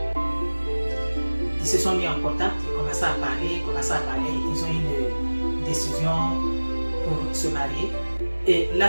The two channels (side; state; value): both; inverted; correlation -1.00